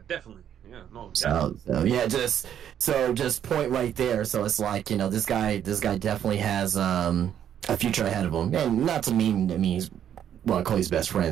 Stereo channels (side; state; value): left; quieter; 9.7 dB